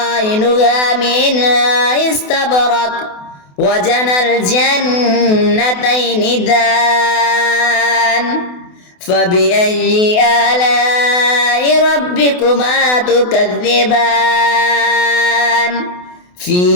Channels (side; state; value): right; late; 28 ms